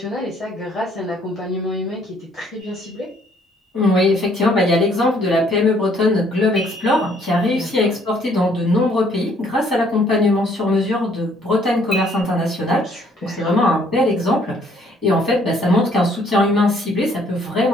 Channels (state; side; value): normal; both; correlation 0.64